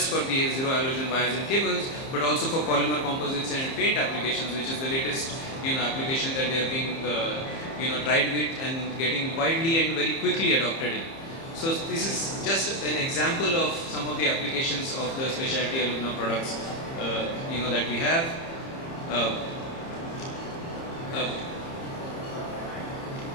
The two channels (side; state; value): right; late; 30 ms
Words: for the zero halogen wires and cables, but also for polymer composites and paint applications, which is the latest application that they are being tried with and getting widely and very quickly adopted in. So this is just an example of some of the applications of the specialty alumina products that we have.